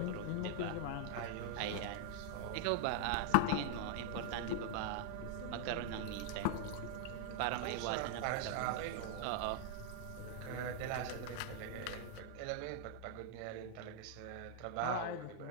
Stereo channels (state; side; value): different; both; correlation -0.01